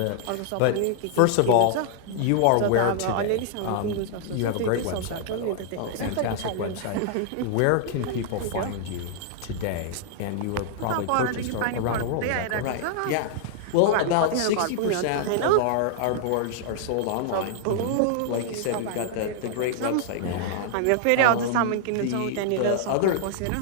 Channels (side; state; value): both; different; correlation -0.01